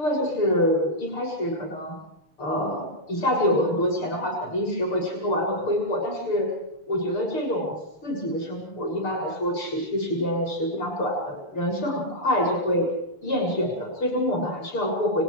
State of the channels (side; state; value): right; late; 6.7 ms